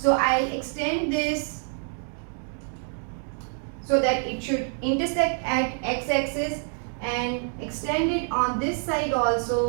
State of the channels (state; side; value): silent; left; 56 dB below the other